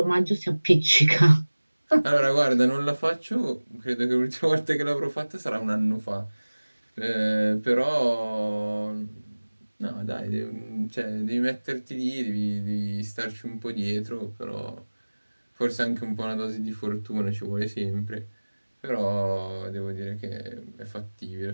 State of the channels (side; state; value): both; inverted; correlation -1.00